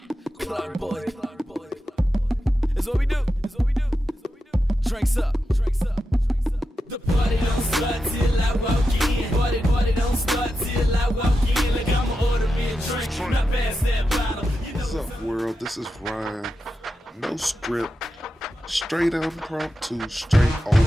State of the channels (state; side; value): normal; both; correlation 0.89